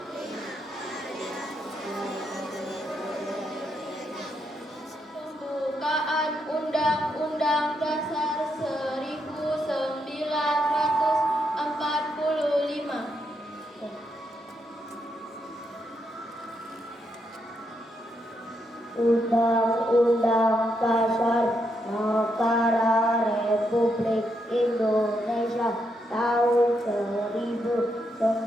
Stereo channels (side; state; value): both; normal; correlation 0.80